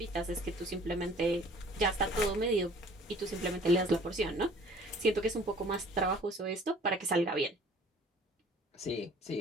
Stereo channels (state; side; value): normal; both; correlation 0.51